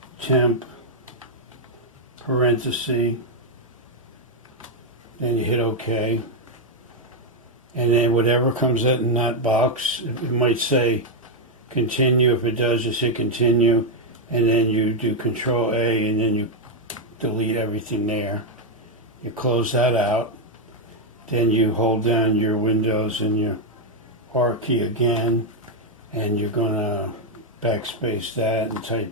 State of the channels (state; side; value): normal; both; correlation 0.01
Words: temp parenthesis, then you hit OK. And then whatever comes out in that box, it might say continue. If it does, just hit continue, and then you do Control A, and then you delete everything there. You close that out. Then you hold down your Windows and your R key again, and you're going to backspace that and